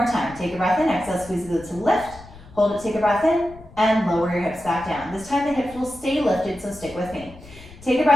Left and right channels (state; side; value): noise; left; rumble, 20 dB below the sound